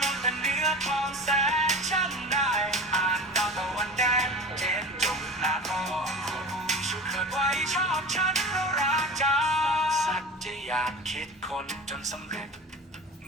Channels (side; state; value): both; normal; correlation 0.34